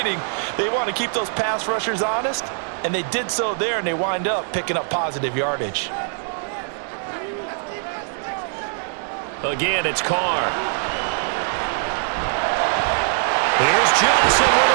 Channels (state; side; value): silent; left; 64 dB below the other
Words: They want to keep those pass rushers honest, and they did so there, and they wind up picking up positive yardage. Again, it's Carr. Here's Johnson with